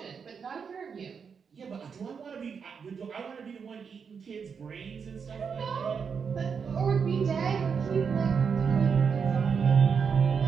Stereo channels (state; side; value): quieter; left; 6.2 dB